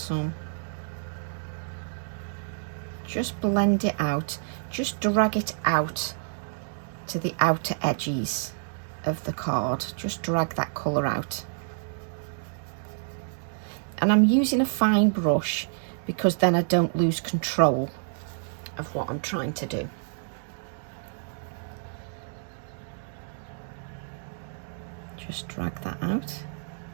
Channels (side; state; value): left; silent; digital silence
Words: Just blend it out. Just drag it out to the outer edges of the card. Just drag that colour out. And I'm using a fine brush because then I don't lose control of what I'm trying to do. Just drag that out.